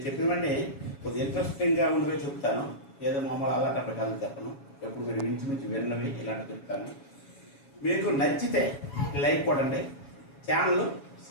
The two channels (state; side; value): late; right; 7.2 ms